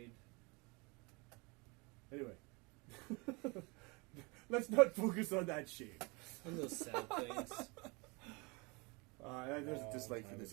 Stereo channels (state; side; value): quieter; left; 28.1 dB